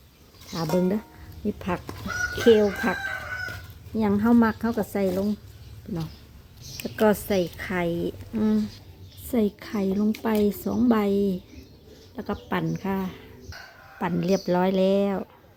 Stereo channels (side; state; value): both; identical; correlation 1.00